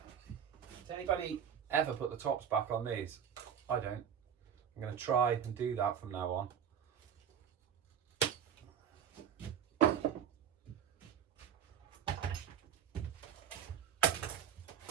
anybody ever put the tops back on these? I don't. I'm going to try and do that from now on.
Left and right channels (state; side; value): quieter; left; 8.5 dB